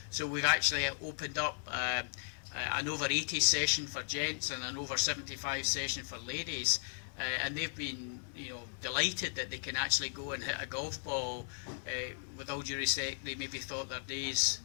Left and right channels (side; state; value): right; silent; 54 dB below the other